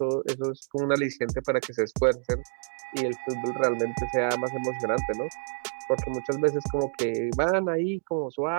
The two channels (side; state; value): left; silent; 59 dB below the other